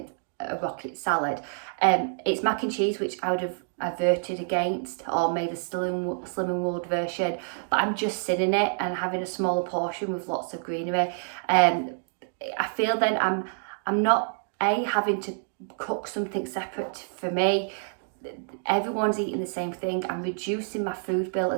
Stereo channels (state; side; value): silent; left; digital silence